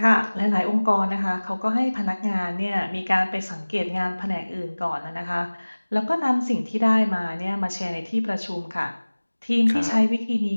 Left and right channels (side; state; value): both; inverted; correlation -1.00